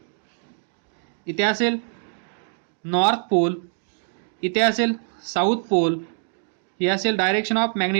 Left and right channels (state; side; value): silent; left; digital silence